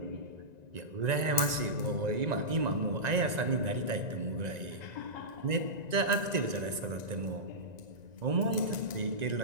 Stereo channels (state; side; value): late; left; 1.9 ms